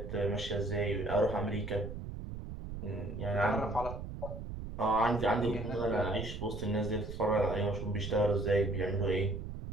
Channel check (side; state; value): right; noise; rumble, 8 dB below the sound